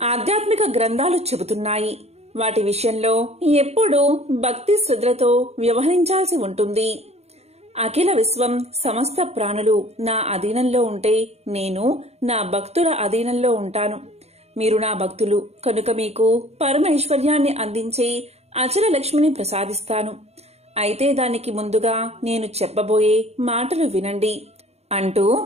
ఆధ్యాత్మిక గ్రంథాలు చెబుతున్నాయి. వాటి విషయంలో ఎప్పుడూ భక్తి శ్రద్ధలతో వ్యవహరించాల్సి ఉంటుంది. అఖిల విశ్వం సమస్త ప్రాణులు నా అధీనంలో ఉంటే నేను నా భక్తుల అధీనంలో ఉంటాను. మీరు నా భక్తులు కనుక మీకు పరమైశ్వర్యాన్ని అందించే అచల లక్ష్మిని ప్రసాదిస్తాను. అయితే దానికి ముందుగా నేను చెప్పబోయే మాటలు వినండి అంటూ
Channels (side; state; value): left; late; 0.31 ms